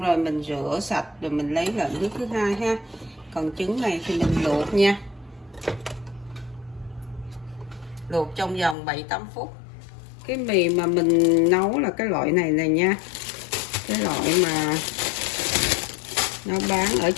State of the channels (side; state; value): right; drops out; at 8.8 s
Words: rồi mình rửa sạch, rồi mình lấy lại nước thứ hai ha. Còn trứng này thì mình luộc nha, luộc trong vòng 7-8 phút. Cái mì mà mình nấu là cái loại này nha, cái loại mà nó bán ở